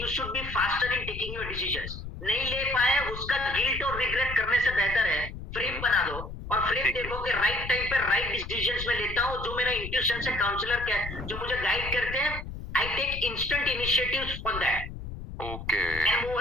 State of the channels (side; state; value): left; noise; rumble, 9 dB below the sound